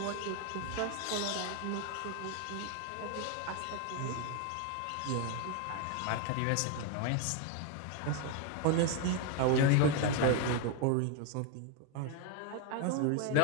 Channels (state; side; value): different; both; correlation 0.01